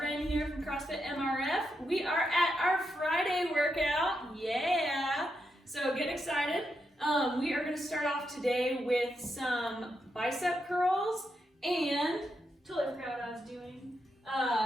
here from CrossFit MRF. We are at our Friday workout. Yeah! So get excited. We are going to start off today with some bicep curls and totally forgot what I was doing.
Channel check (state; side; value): normal; both; correlation 0.83